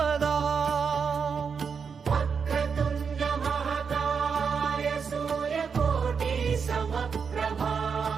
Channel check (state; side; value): quieter; left; 6.1 dB